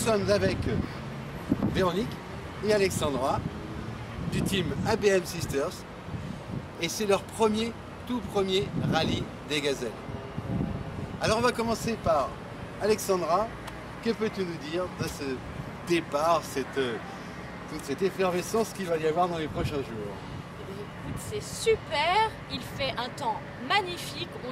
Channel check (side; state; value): both; identical; correlation 1.00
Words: avec Véronique et Alexandra du team ABM Sisters. Et c'est leur tout premier rallye des gazelles. Alors on va commencer par Alexandra. Que peux-tu nous dire de ce départ, toute cette effervescence qu'il va y avoir dans les prochains jours? C'est super, il fait un temps magnifique,